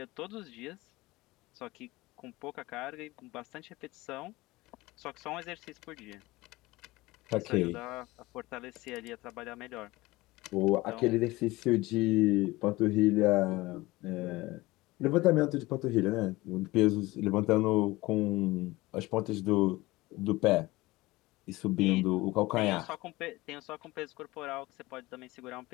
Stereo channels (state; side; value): quieter; right; 20.2 dB